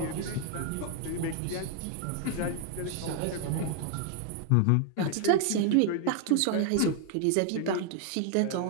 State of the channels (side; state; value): both; different; correlation 0.00